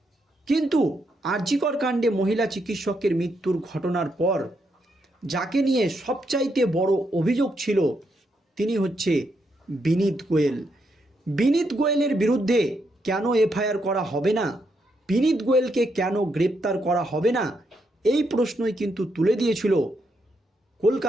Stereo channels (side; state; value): both; normal; correlation 0.79